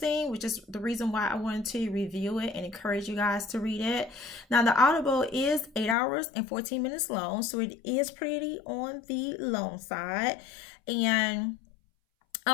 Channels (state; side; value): drops out; right; at 6.0 s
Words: which is the reason why I wanted to review it and encourage you guys to read it. Now, the Audible is 8 hours and 14 minutes long, so it is pretty on the long side. And